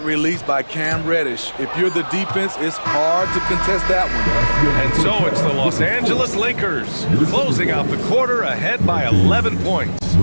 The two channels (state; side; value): inverted; both; correlation -1.00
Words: release by Cam Reddish. If you're the defense, it's hard to contest that one. And so it's the Los Angeles Lakers closing out the quarter ahead by 11 points.